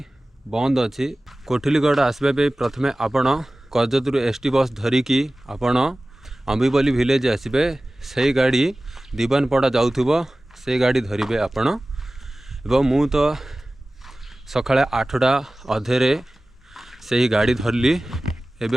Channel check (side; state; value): both; normal; correlation 0.97